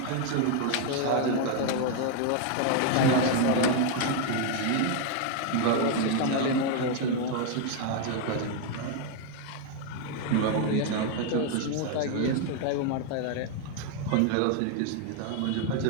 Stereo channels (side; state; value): both; different; correlation 0.01